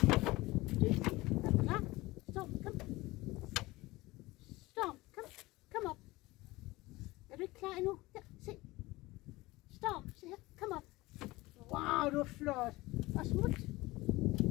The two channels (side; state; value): right; quieter; 20.3 dB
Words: Dygtig. Er du klar? Stop. Kom. Storm, kom op. Er du ikke klar endnu? Her, se. Storm, se her. Kom op. Wow, du er flot. Og smut.